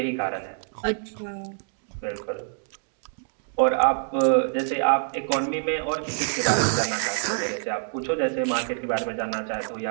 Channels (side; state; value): left; silent; digital silence